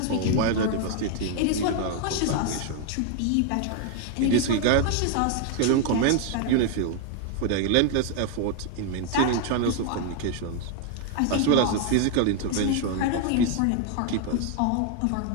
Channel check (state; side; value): different; both; correlation 0.00